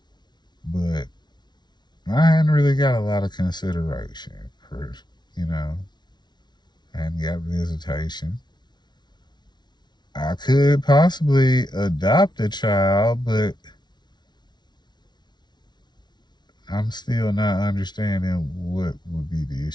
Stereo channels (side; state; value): right; late; 0.20 ms